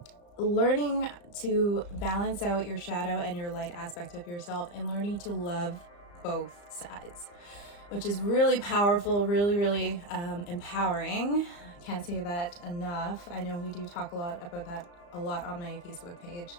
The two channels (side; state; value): right; late; 35 ms